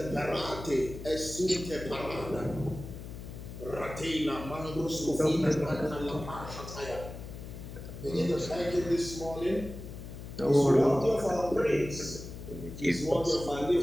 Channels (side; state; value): left; noise; hum, 11 dB below the sound